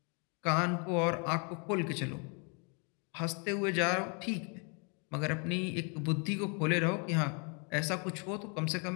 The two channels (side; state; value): right; quieter; 36.0 dB